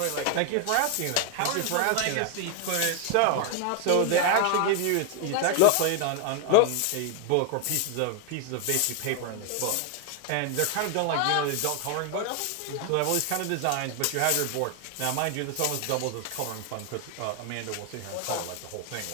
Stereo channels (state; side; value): different; both; correlation 0.01